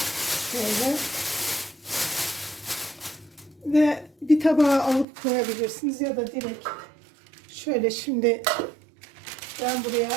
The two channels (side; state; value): left; drops out; at 5.1 s